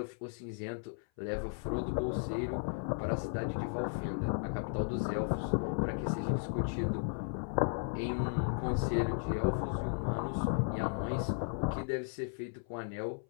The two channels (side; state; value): right; silent; 54 dB below the other